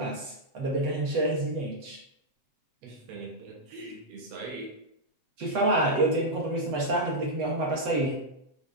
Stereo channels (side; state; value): left; late; 7.9 ms